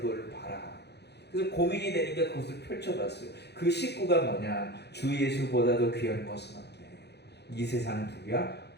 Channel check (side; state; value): right; late; 0.48 ms